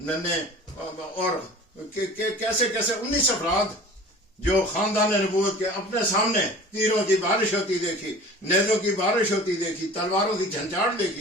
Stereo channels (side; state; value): both; normal; correlation 0.42